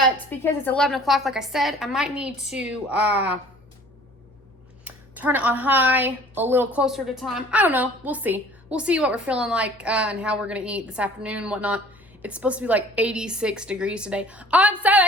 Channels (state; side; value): normal; both; correlation 0.50